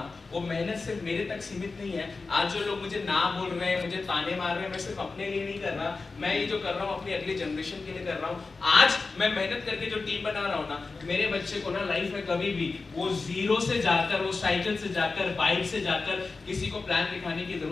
वो मेहनत सिर्फ मेरे तक सीमित नहीं है। आज जो लोग मुझे ना बोल रहे हैं, मुझे ताने मार रहे हैं, मैं सिर्फ अपने लिए नहीं कर रहा। मैं ये जो कर रहा हूँ अपनी अगली जनरेशन के लिए कर रहा हूँ। आज मैं मेहनत करके जो टीम बना रहा हूँ ना, मेरे बच्चे को ना लाइफ में कभी भी वो जीरो से जाकर, वो साइकिल से जाकर, बाइक से जाकर किसी को प्लान दिखाने की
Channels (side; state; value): right; quieter; 4.0 dB